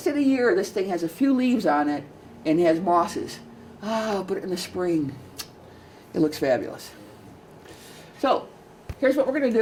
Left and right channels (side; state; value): both; identical; correlation 1.00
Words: of the year, this thing has a few leaves on it and has mosses. But in the spring, it looks fabulous. So here's what we're going to